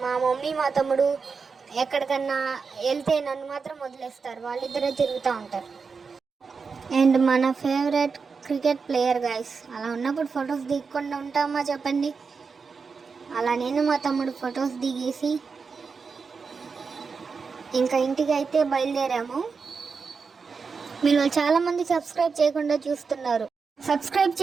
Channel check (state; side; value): quieter; left; 5.2 dB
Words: మా మమ్మీ మా తమ్ముడు ఎక్కడికన్నా వెళ్తే నన్ను మాత్రం వదిలేస్తారు, వాళ్ళిద్దరే తిరుగుతూ ఉంటారు. అండ్ మన ఫేవరెట్ క్రికెట్ ప్లేయర్ గైస్. అలా ఉన్నప్పుడు ఫొటోస్ దిగకుండా ఉంటామా చెప్పండి. అలా నేను మా తమ్ముడు ఫొటోస్ దిగేసి ఇంకా ఇంటికి అయితే బయలుదేరాము. మీరు చాలామంది సబ్స్క్రైబ్ చేయకుండా చూస్తున్నారు, సబ్స్క్రైబ్